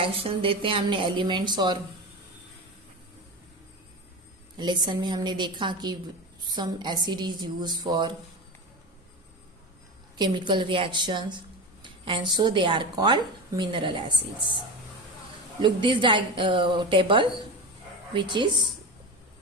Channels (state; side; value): normal; both; correlation 0.24